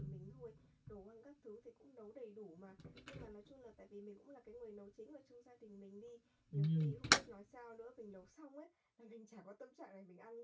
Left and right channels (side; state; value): both; identical; correlation 1.00